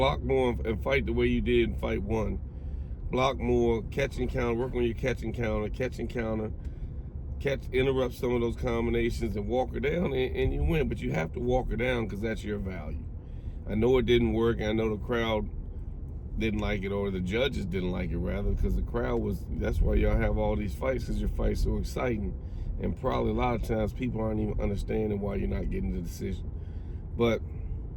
more and fight the way you did in fight 1. Block more, catch and counter, work on your catch and counter, interrupt some of those combinations and walk her down, and you win. But you have to walk her down because that's your value. I know it didn't work. I know the crowd didn't like it, or the judges didn't like it, rather, because the crowd was, that's why y'all have all these fights, because your fight's so exciting. And probably a lot of times people aren't even understanding why you're not getting the decision. But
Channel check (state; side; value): identical; both; correlation 1.00